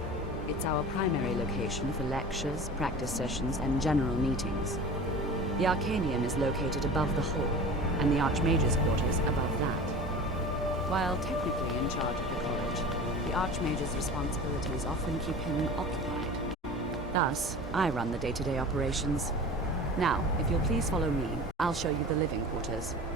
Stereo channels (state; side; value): normal; both; correlation 0.36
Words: It's our primary location for lectures, practice sessions, and general meetings. The Arcanium is located above the hall, and the Archmage's quarters above that. While technically in charge of the college, the Archmage's responsibilities often keep him occupied. Thus, I run the day-to-day operations. Now, if you'll please follow me, I'll show you the living quarters.